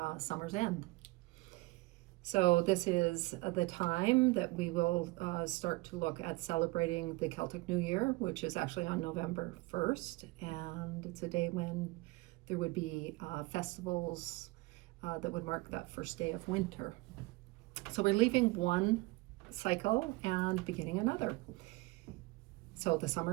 summer's end. So this is the time that we will start to look at celebrating the Celtic New Year, which is actually on November 1st, and it's a day when there would be festivals that would mark that first day of winter. So we're leaving one cycle and beginning another. So the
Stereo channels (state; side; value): quieter; left; 22.8 dB